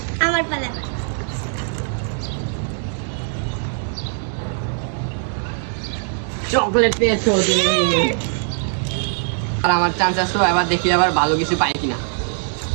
আমার পালা। চকলেট পেয়েছো তুমি। আর আমার চান্স আসলো, এবার দেখি আবার ভালো কিছু পাই কিনা।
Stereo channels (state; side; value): silent; left; digital silence